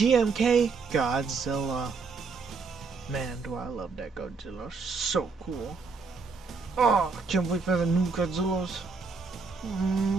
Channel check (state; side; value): quieter; left; 4.7 dB